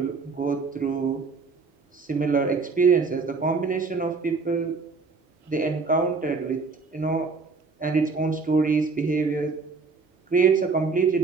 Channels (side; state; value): left; quieter; 4.5 dB